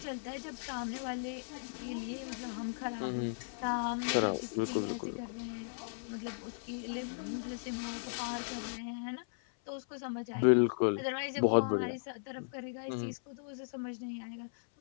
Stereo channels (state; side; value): silent; right; 53 dB below the other